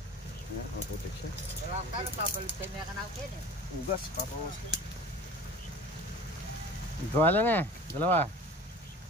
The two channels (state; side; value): normal; both; correlation 0.40